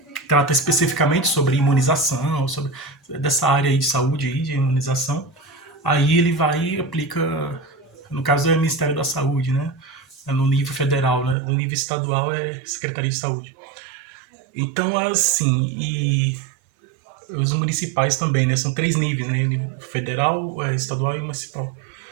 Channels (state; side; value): drops out; left; at 11.4 s